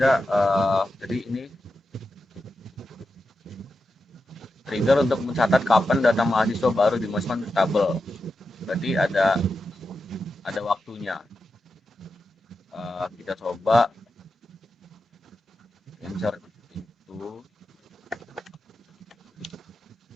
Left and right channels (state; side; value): normal; both; correlation 0.90